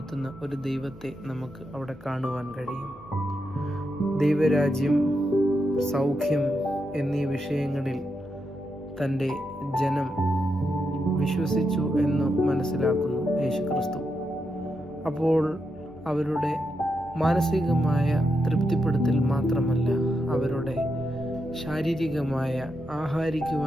ഒരു ദൈവത്തെ നമുക്ക് അവിടെ കാണുവാൻ കഴിയും. ദൈവരാജ്യം, സൗഖ്യം എന്നീ വിഷയങ്ങളിൽ തൻ്റെ ജനം വിശ്വസിച്ചു എന്ന് മനസ്സിലാക്കുന്നു യേശു ക്രിസ്തു. അപ്പോൾ അവരുടെ മാനസികമായ തൃപ്തിപ്പെടുത്തൽ മാത്രമല്ല, അവരുടെ ശാരീരികമായ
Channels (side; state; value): both; normal; correlation 0.84